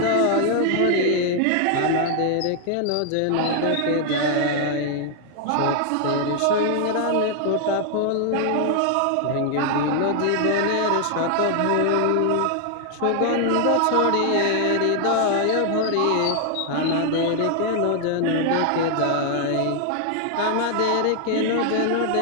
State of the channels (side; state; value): both; different; correlation 0.00